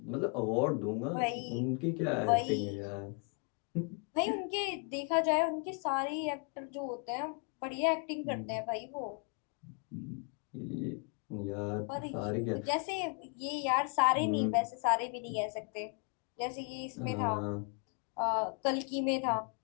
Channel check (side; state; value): right; quieter; 38.1 dB